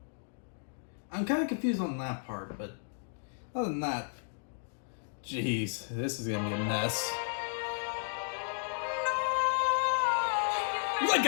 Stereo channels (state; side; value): silent; right; digital silence